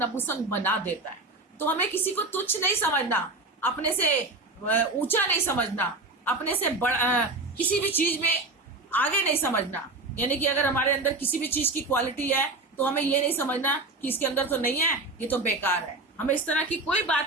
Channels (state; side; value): quieter; left; 3.2 dB